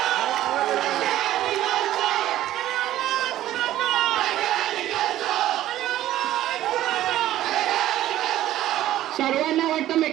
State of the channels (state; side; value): quieter; left; 13.6 dB